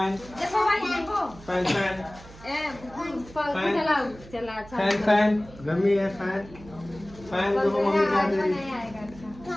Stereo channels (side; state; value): right; noise; hum, 19 dB below the sound